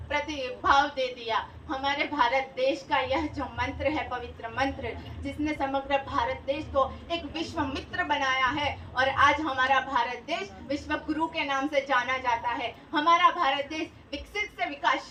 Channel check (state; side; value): identical; both; correlation 1.00